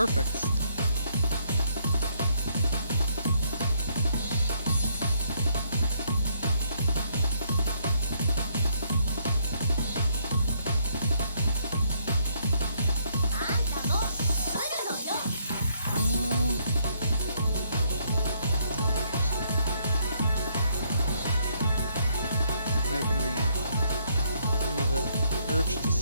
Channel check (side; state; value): both; inverted; correlation -0.70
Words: Making me the urge to